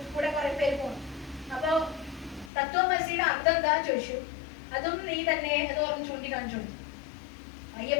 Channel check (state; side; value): drops out; right; at 2.5 s